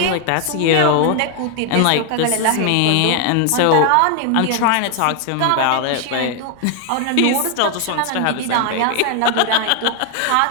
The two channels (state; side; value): different; both; correlation 0.00